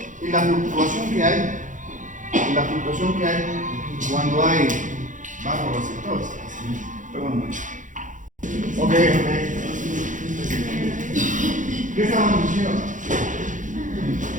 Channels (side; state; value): left; late; 0.37 ms